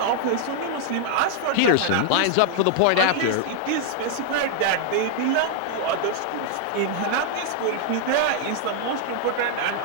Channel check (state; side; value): different; both; correlation 0.00